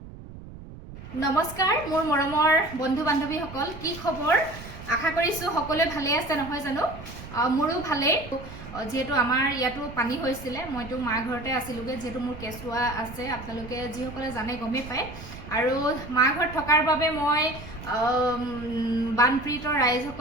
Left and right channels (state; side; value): noise; right; rumble, 14 dB below the sound